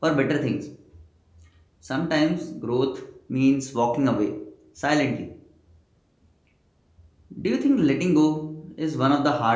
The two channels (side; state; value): both; identical; correlation 1.00